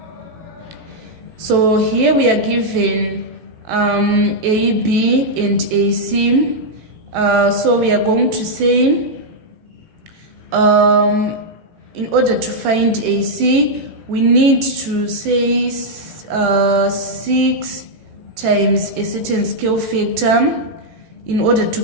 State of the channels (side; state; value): left; late; 18 ms